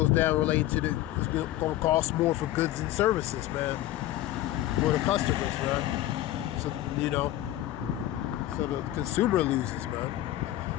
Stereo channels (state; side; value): quieter; right; 14.5 dB